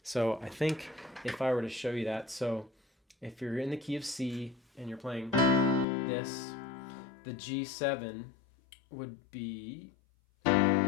So I think if I were to show you that, so if you're in the key of C and you're playing this, the G7 would be,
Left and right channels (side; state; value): right; drops out; at 5.9 s